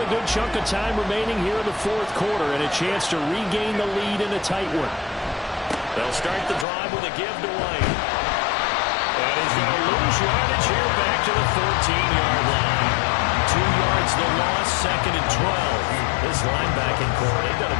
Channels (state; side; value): drops out; right; at 6.7 s